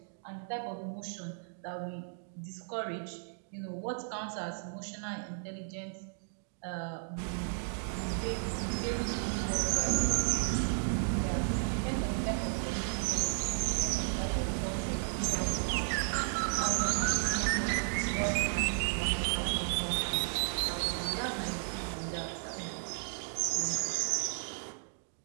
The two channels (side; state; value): left; silent; digital silence